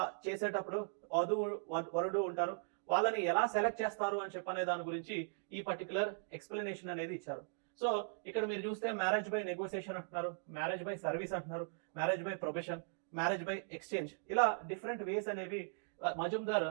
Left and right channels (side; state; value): left; silent; digital silence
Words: చేసేటప్పుడు వరుడు ఉంటారు, వాళ్ళని ఎలా సెలెక్ట్ చేస్తారు అని చెప్పనే దాని గురించి ఈ పర్టికులర్ ఎక్స్ప్లెనేషన్ అనేది ఇచ్చారు. సో ఇక్కడ మీరు చూస్తే మ్యారేజ్ బై నెగోసియేషన్ అంటున్నారు, మ్యారేజ్ బై సర్వీస్ అంటున్నారు, marriage by profession, marriage by exchange, ఇలా డిఫరెంట్ వేస్ అనేవి మజుందార్